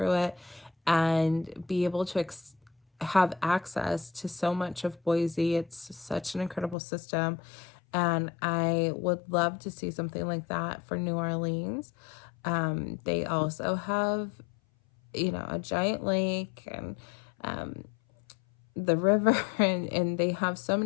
it, and be able to have access to so much of Boise. It's such an incredible system. And I would love to see something like that for New Orleans. They also have, a giant lake and the river, and they have so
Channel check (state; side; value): drops out; right; at 6.8 s